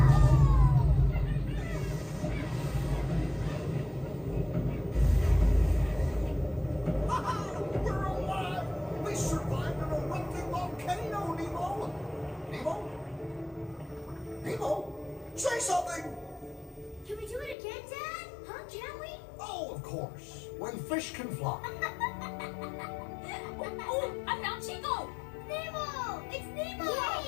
We're alive! We survived an erupting volcano, Nemo! Nemo? Nemo? Say something! Can we do it again, Dad? Huh? Can we? Oh, of course. When fish can fly. Oh, I found Chico. Nemo! It's Nemo!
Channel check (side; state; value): right; drops out; at 17.6 s